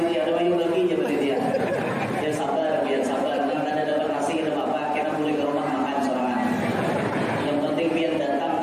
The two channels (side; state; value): both; identical; correlation 1.00